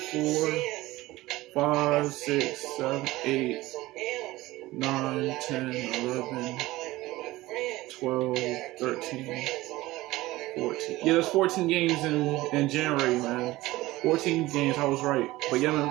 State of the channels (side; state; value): left; quieter; 18.4 dB